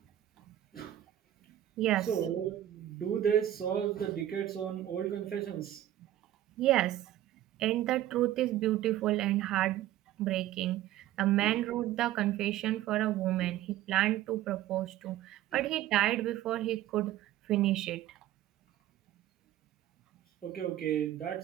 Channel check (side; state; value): left; quieter; 13.1 dB